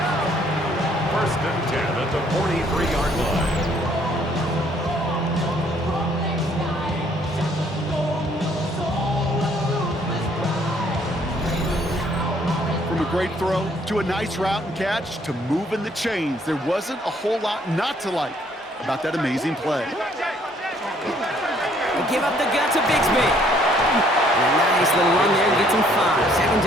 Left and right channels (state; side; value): normal; both; correlation 0.64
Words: 1st and 10 at the 43-yard line. From a great throw to a nice route and catch to moving the chains, there wasn't a whole lot not to like about that amazing play. They give up the gut to Bigsby. And a nice little run there gets him 5. 2nd